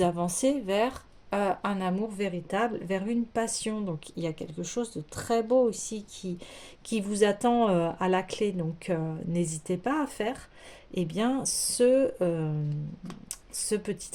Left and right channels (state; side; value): identical; both; correlation 1.00